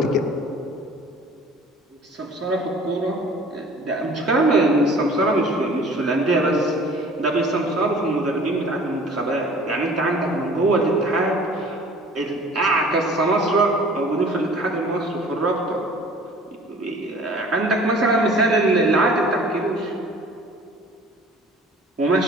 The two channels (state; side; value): normal; both; correlation 0.48